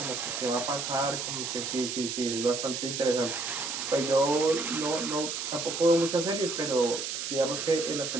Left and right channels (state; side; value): noise; right; hiss, 4 dB below the sound